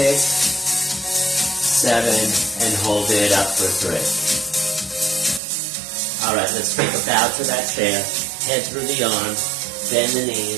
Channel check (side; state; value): left; drops out; at 5.4 s